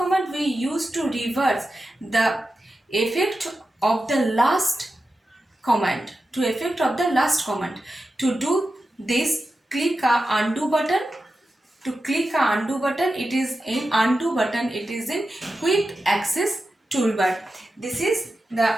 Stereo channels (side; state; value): both; normal; correlation 0.91